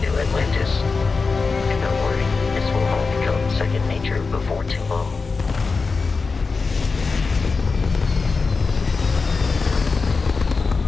New Atlantis. And don't worry, this will all become second nature before too long.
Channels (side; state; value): right; quieter; 4.4 dB